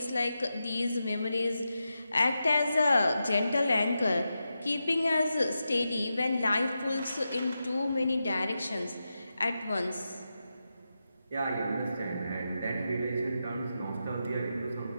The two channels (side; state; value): both; inverted; correlation -0.89